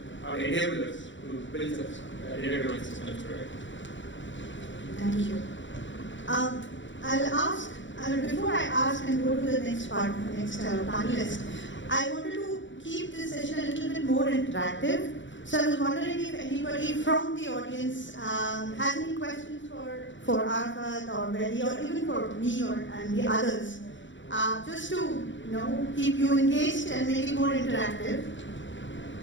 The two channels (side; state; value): right; late; 0.54 ms